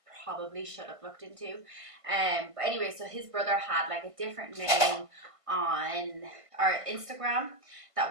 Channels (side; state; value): left; late; 1.6 ms